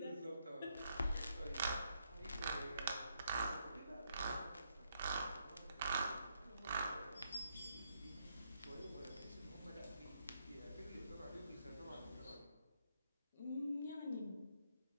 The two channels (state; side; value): inverted; both; correlation -0.77